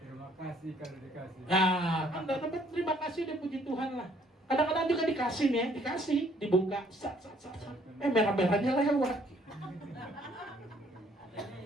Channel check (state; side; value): normal; both; correlation 0.63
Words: Terima kasih kalau dikasih. Nah, kan dapat terima kasih deh, puji Tuhan lah. Kadang-kadang juga dikasih nih, dikasih, dibuka, sat. Merah-merahnya lewat.